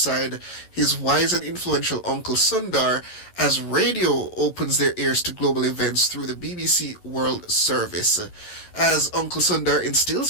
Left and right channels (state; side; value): late; right; 11 ms